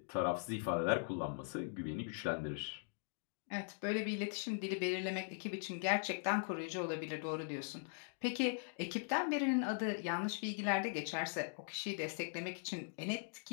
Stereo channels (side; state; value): right; silent; digital silence